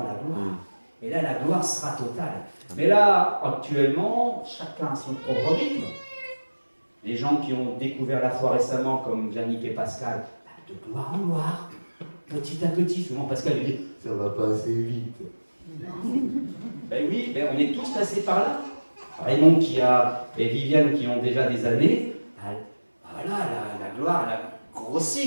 la gloire. Et là, la gloire sera totale. Mais là, actuellement, chacun a son propre rythme. Les gens qui ont découvert la foi récemment, comme Yannick et Pascal, de gloire en gloire, petit à petit. Souvent, Pascal dit, ça va pas assez vite. Ben oui, on est tous passés par là. Raymond et Viviane qui ont déjà des années, voilà, la gloire, elle a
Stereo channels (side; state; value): both; inverted; correlation -1.00